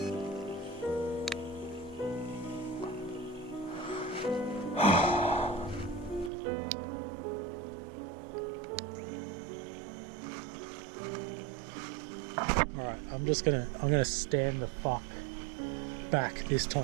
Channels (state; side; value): drops out; left; at 6.3 s